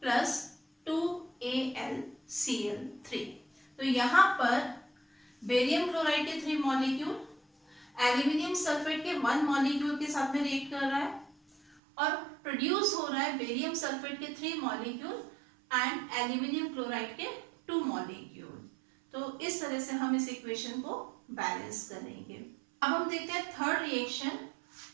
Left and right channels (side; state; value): left; drops out; at 11.8 s